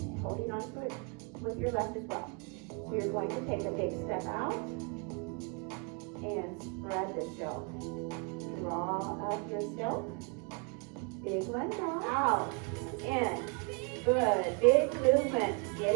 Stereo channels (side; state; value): left; quieter; 35.4 dB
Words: holding on to it with your left as well. So you're going to take a big step out and spread the silk. Draw up your silk. Big one now. Out. In. Good. Big movement.